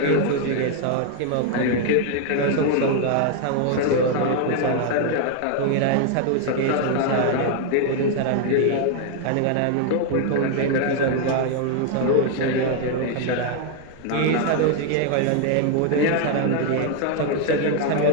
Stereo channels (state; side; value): different; both; correlation 0.00